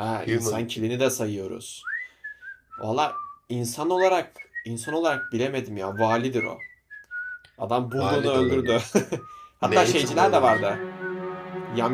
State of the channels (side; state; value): both; identical; correlation 1.00